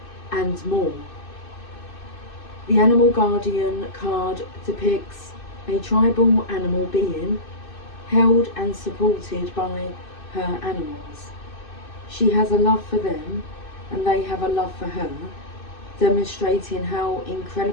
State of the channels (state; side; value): late; right; 2.6 ms